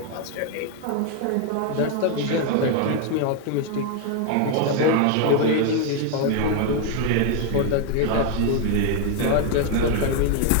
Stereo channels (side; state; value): both; different; correlation 0.01